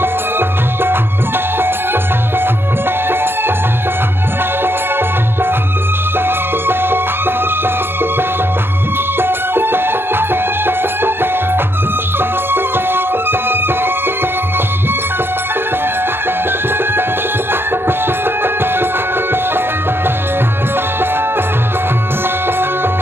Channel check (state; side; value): late; left; 0.11 ms